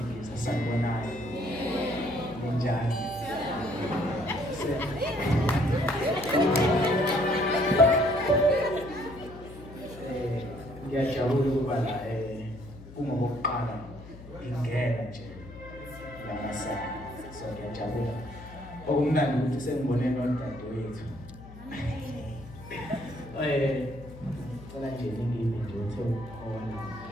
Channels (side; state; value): left; noise; hum, 16 dB below the sound